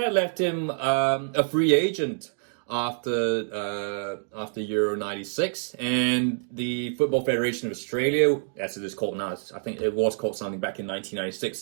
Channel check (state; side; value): silent; left; digital silence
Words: left him a free agent after Euro 96. And the Football Federation of Australia, as it is called now, I think it was called something back in